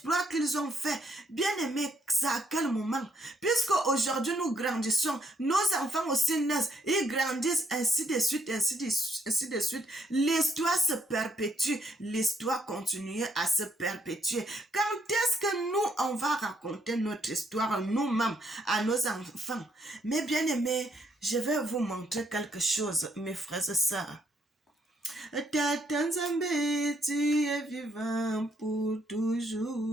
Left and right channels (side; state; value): both; normal; correlation 0.71